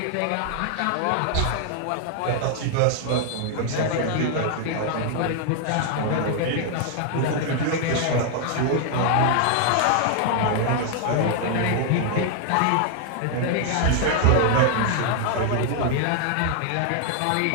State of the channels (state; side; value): different; both; correlation 0.00